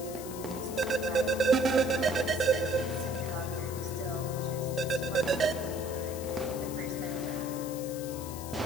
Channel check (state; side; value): noise; left; hiss, 12 dB below the sound